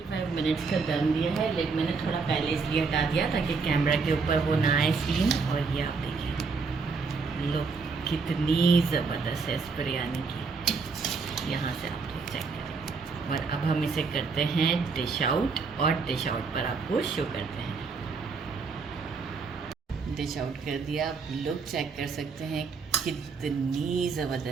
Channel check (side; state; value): left; quieter; 4.7 dB